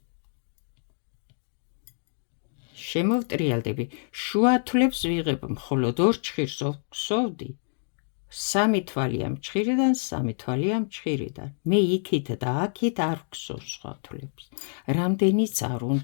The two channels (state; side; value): silent; right; digital silence